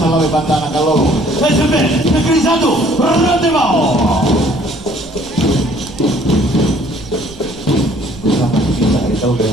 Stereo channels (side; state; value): right; noise; rumble, 21 dB below the sound